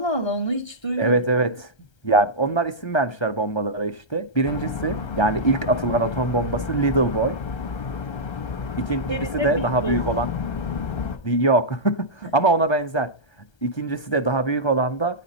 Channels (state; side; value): late; right; 1.3 ms